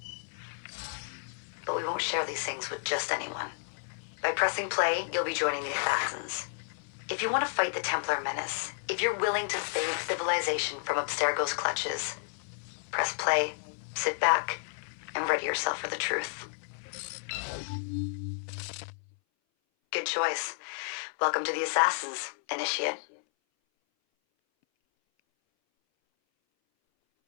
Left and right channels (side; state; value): right; silent; 57 dB below the other